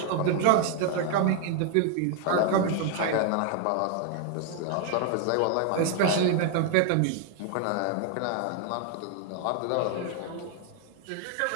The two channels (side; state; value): both; different; correlation 0.00